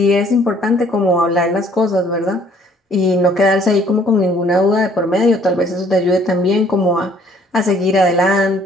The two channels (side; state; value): both; normal; correlation 0.60